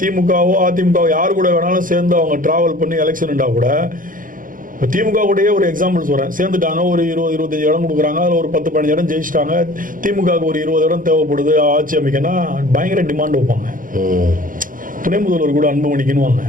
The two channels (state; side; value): late; left; 0.40 ms